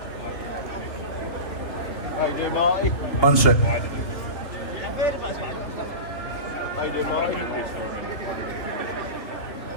How you doing, Marty? One sec. How you doing, Marty?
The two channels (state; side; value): late; right; 3.3 ms